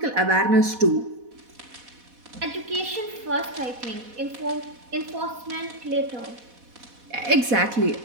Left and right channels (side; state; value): left; late; 4.1 ms